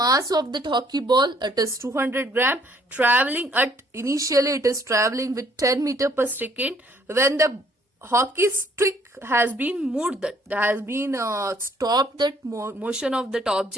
of that hockey ball, it is 200 gram, traveling at, initially it is traveling with 10 meter per second. When the hockey stick has been moved, that has been stopped that motion of that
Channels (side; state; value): both; normal; correlation 0.63